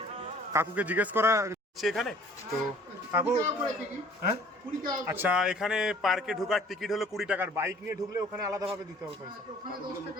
কাকুকে জিজ্ঞেস করা এখানে, তো কাকু হ্যাঁ আচ্ছা, এখানে পার্কে ঢোকার টিকিট হলো 20 টাকার, বাইক নিয়ে ঢুকলে ওখানে আলাদাভাবে দিতে হবে পয়সা।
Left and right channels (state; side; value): normal; both; correlation 0.53